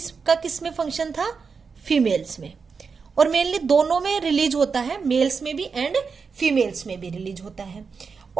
किस में फंक्शन था, फीमेल्स में। और मेनली दोनों में रिलीज होता है, मेल्स में भी एंड फीमेल्स में भी रिलीज होता है।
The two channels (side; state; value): left; quieter; 5.3 dB